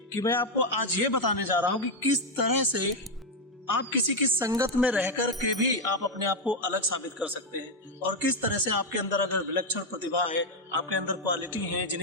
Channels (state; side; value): normal; both; correlation 0.04